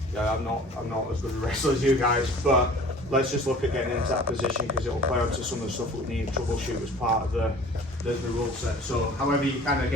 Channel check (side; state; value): both; normal; correlation 0.47